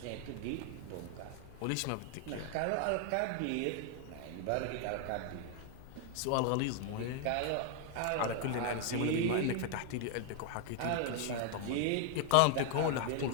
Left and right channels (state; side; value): different; both; correlation 0.00